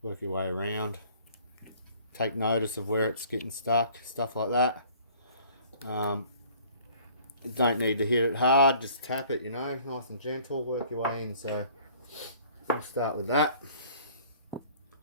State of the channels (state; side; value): inverted; both; correlation -0.54